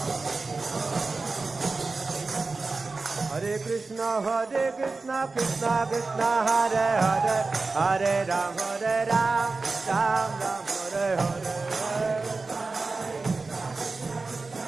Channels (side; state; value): left; quieter; 3.8 dB